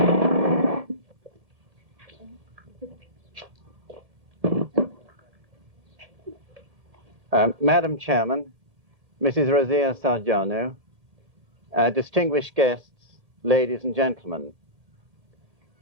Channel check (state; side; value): late; left; 2.1 ms